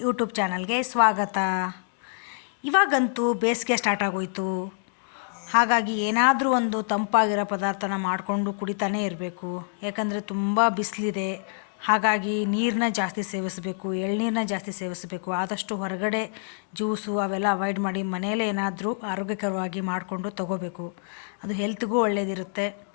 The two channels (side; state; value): right; silent; digital silence